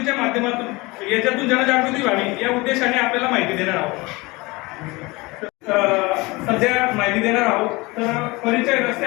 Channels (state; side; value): quieter; right; 23.5 dB